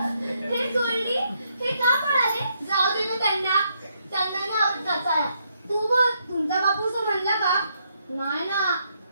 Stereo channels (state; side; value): inverted; both; correlation -0.76